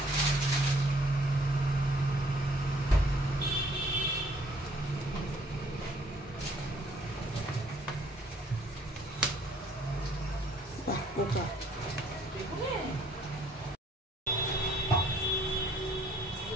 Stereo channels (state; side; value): normal; both; correlation 0.62